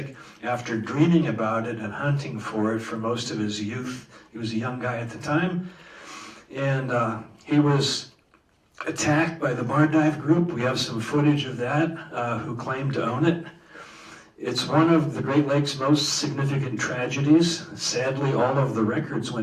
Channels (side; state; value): both; identical; correlation 1.00